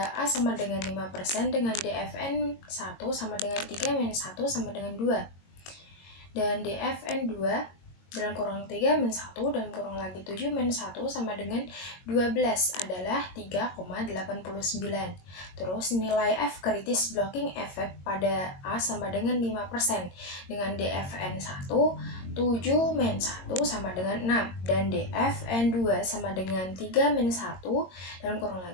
A sama dengan 5% dengan DFN 1 sama dengan 3-1 sama dengan 2 dan DFN 2 dalam kurang 3-1 dan kurang lagi 7-1 sama dengan 12 adalah 3,89. Terus nilai F kritis blocking effect pada A sama dengan 5% dengan DFN 1 7-1 sama dengan 6 dan DFN 2 sama dengan 3-1 dan kurang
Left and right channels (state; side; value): late; right; 22 ms